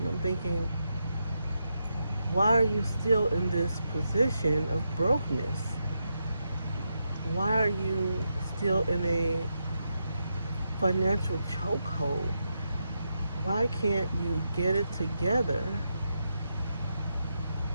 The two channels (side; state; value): both; inverted; correlation -0.84